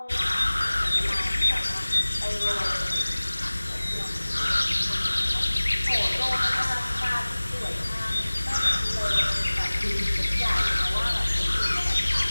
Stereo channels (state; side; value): inverted; both; correlation -1.00